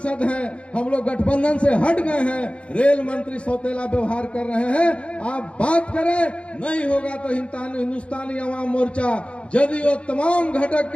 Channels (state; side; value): late; right; 0.060 ms